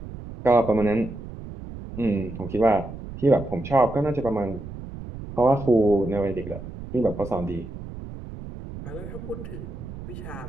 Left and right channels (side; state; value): right; noise; rumble, 11 dB below the sound